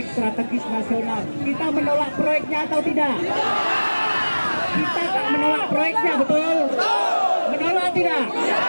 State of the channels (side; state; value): both; inverted; correlation -1.00